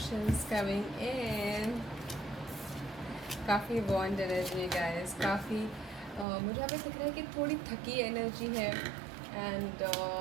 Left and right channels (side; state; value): left; drops out; at 6.2 s